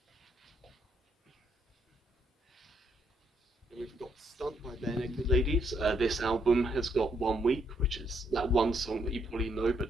We've got Stunt by Bare Naked Ladies. This album has got 1 Week, which is that one song that you probably know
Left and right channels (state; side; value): normal; both; correlation 0.73